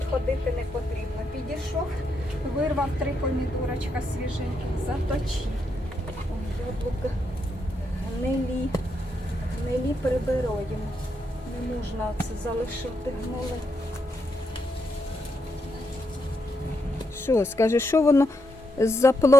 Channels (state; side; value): normal; both; correlation 0.81